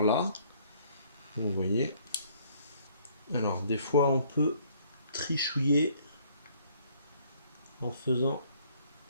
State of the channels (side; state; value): both; inverted; correlation -0.62